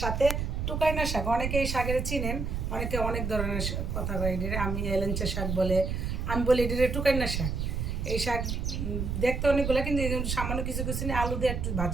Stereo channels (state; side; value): noise; right; rumble, 2 dB below the sound